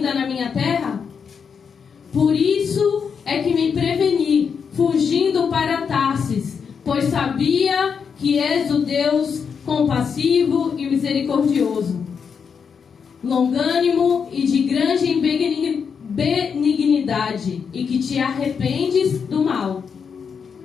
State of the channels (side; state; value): right; quieter; 6.4 dB